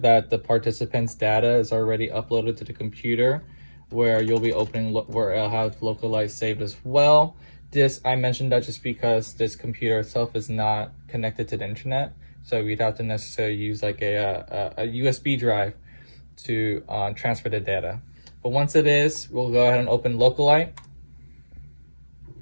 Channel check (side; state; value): both; inverted; correlation -1.00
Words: the participant's data is already uploaded to the computer where you'll be opening where it'll have Localite saved as well. This I mentioned that just because this computer itself is not connected to the internet, so we'd have to necessarily use like a USB drive to transfer the data. But once it is, we'll go ahead and open Localite.